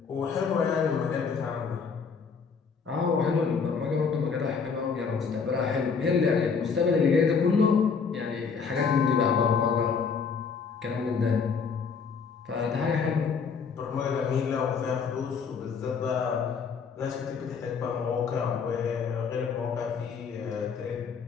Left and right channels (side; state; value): right; quieter; 5.7 dB